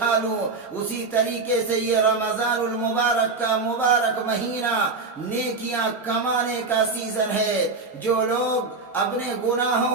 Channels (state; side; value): quieter; left; 4.0 dB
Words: لوں۔ اسی طریقے سے یہ رمضان المبارک کا مبارک مہینہ نیکیاں کمانے کا سیزن ہے۔ جو لوگ اپنے